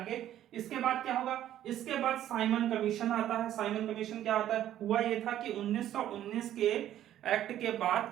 इसके बाद क्या होगा, इसके बाद साइमन कमीशन आता है। साइमन कमीशन क्या आता है, हुआ ये था कि 1919 के एक्ट के बाद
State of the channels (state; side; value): quieter; left; 12.0 dB